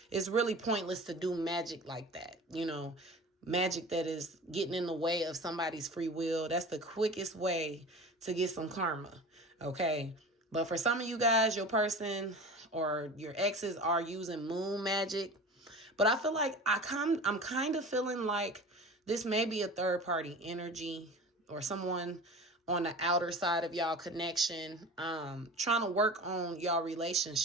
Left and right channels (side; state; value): both; normal; correlation 0.36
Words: really pointless to do magic like that, magic that is getting in the way of somebody's free will. That's the quickest way to get some karma, okay? But for some of you guys, your person or your exes are using moon magic. But I feel like I'm kind of feeling like this may be a third party energy, or someone on the outer side of y'all connection, trying to work on y'all